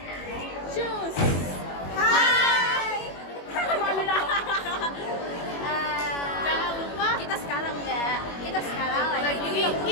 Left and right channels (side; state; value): right; late; 21 ms